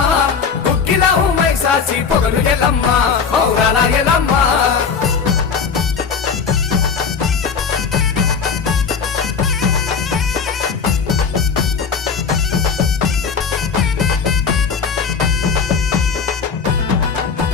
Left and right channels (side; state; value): right; quieter; 5.9 dB